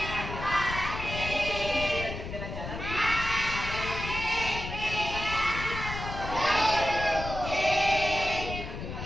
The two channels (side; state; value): left; noise; rumble, 7 dB below the sound